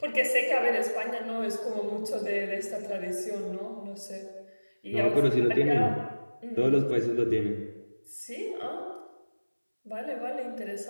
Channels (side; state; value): both; inverted; correlation -1.00